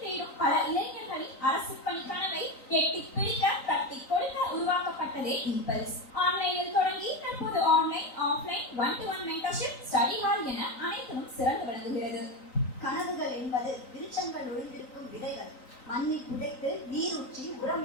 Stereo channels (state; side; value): late; right; 3.9 ms